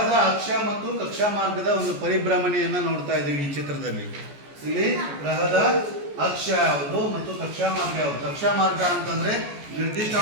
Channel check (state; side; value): late; left; 14 ms